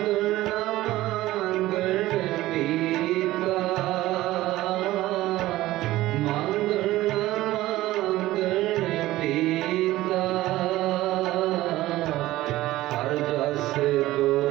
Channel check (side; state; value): left; quieter; 16.5 dB